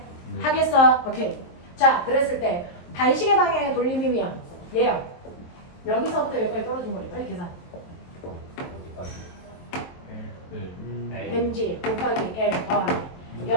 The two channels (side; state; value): right; late; 23 ms